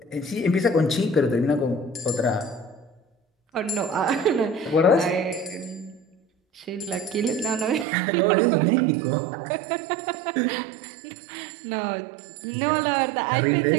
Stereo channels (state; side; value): drops out; left; at 7.9 s